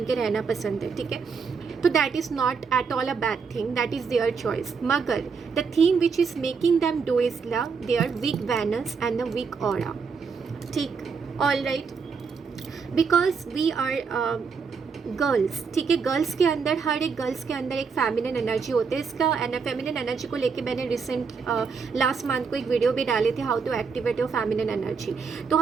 के रहना पसंद है। ठीक है, तो that is not at all a bad thing, that is their choice, मगर the thing which is making them do is their weak veins and the weak aura. ठीक, all right, because we are girls, ठीक है, girls के अंदर, हर एक girls के अंदर एक फेमिनिन एनर्जी होती है। इसका फेमिनिन एनर्जी को लेके मैंने रिसेंट लास्ट मंथ को एक वीडियो भी डाले थे, how to activate your feminine energy. तो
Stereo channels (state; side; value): quieter; left; 5.5 dB